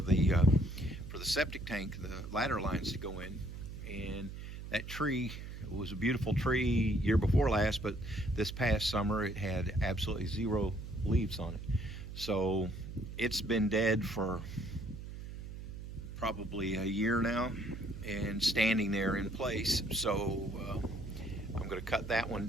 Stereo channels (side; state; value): right; noise; hum, 9 dB below the sound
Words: septic tank, the ladder lines to go in. And that tree was a beautiful tree year before last, but this past summer it had absolutely zero leaves on it. So it's been dead for probably a year now and standing there in place. So I'm going to cut that one